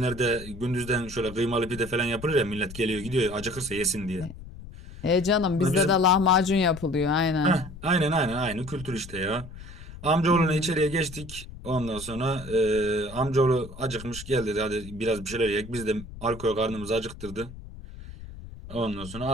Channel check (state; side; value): noise; left; rumble, 14 dB below the sound